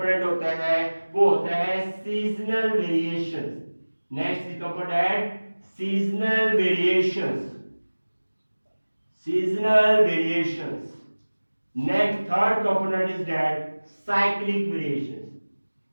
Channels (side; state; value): both; inverted; correlation -1.00